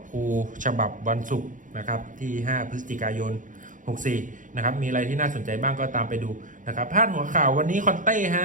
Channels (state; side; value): late; left; 0.38 ms